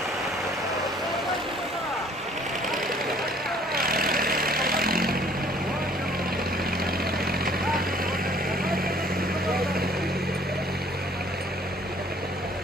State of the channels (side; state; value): both; normal; correlation 0.57